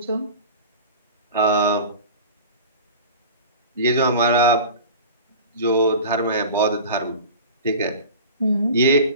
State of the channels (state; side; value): inverted; both; correlation -0.36